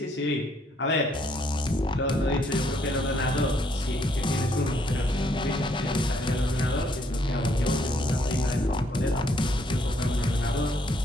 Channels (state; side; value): normal; both; correlation 0.70